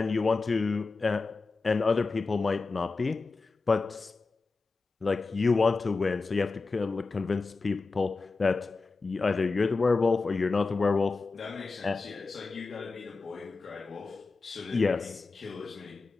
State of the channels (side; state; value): right; quieter; 4.0 dB